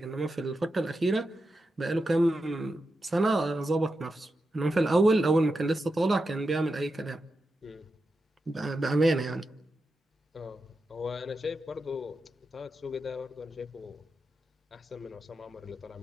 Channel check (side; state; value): both; normal; correlation 0.89